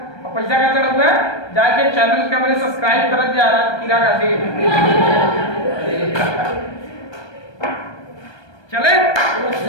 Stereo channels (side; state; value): right; late; 1.2 ms